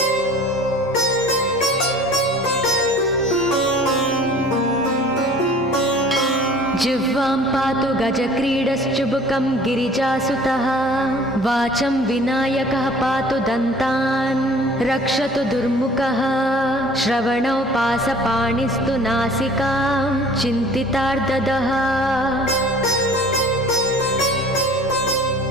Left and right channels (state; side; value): normal; both; correlation 0.49